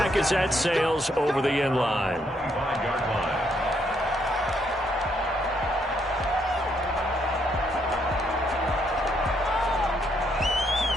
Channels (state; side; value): normal; both; correlation 0.73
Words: as that sails over the end line. 5-yard line.